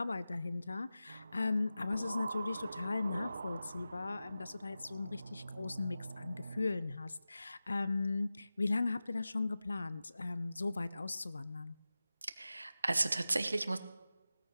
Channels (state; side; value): inverted; both; correlation -0.94